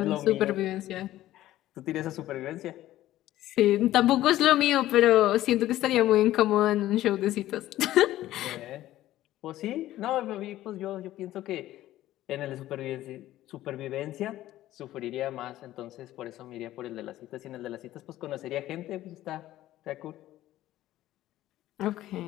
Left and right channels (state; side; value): quieter; right; 14.5 dB